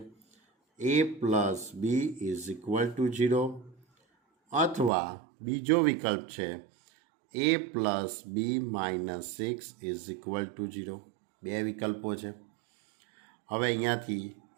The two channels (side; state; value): left; drops out; at 4.9 s